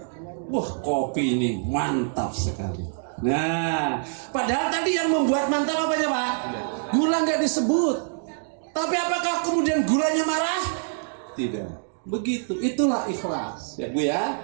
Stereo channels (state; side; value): silent; left; digital silence